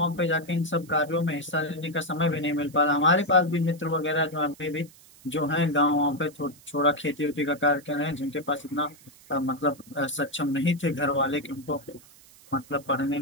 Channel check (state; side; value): noise; right; hiss, 24 dB below the sound